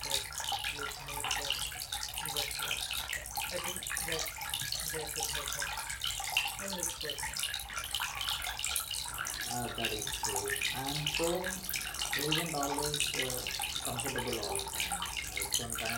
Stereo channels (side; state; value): both; identical; correlation 1.00